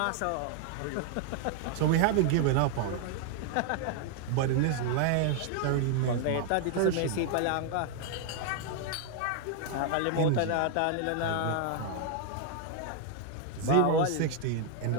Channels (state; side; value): different; both; correlation 0.00